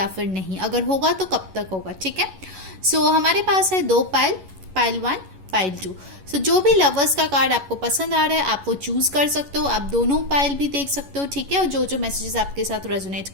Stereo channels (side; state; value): left; late; 11 ms